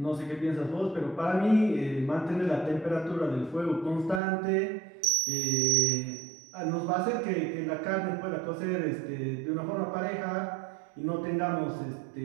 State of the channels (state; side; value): drops out; left; at 4.2 s